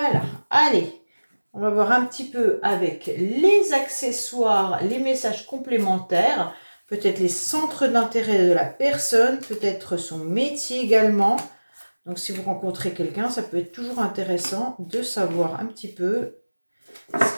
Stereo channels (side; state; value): both; inverted; correlation -1.00